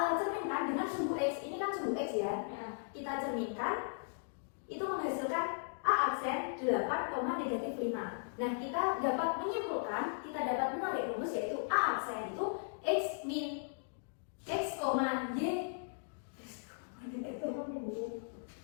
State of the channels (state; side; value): silent; right; digital silence